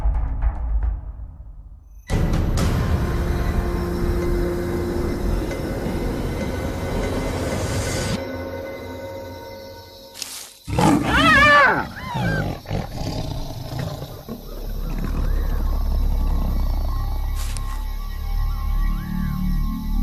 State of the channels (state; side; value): identical; both; correlation 1.00